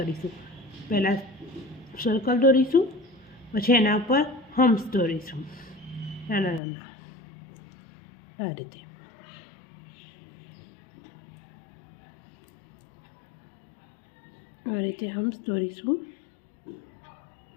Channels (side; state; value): right; drops out; at 6.6 s